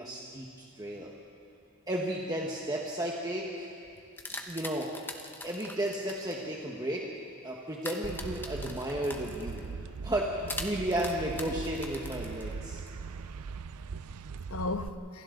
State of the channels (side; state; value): both; normal; correlation 0.51